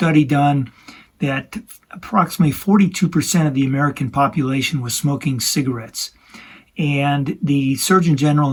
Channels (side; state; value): both; identical; correlation 1.00